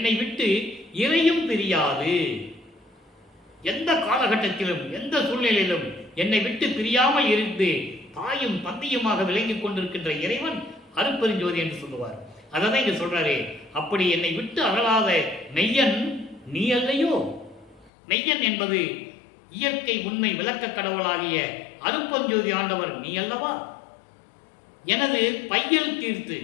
விட்டு இறையும் பிரியாது. எந்த காலகட்டத்திலும் எந்த சூழ்நிலையிலும் என்னை விட்டு பிரியாமல் இருந்து தாயும் தந்தையுமாக விளங்கிக் கொண்டிருக்கின்ற இறைவன் அருட்பெருஞ்சோதி என்று சொல்லுவார். அதான் இங்க சொல்றாரு. அப்படி என்னை விட்டு அகலாத மெய்யன் நீ அல்லையோ. மெய்யன் என்பது இயற்கை உண்மை விளக்க கடவுளாகிய அருட்பெருஞ்சோதி ஆண்டவர் நீ அல்லவா. எனது பையல் தீர்த்து,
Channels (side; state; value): right; drops out; at 17.9 s